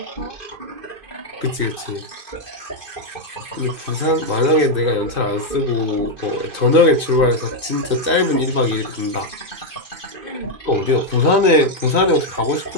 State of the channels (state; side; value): late; left; 2.5 ms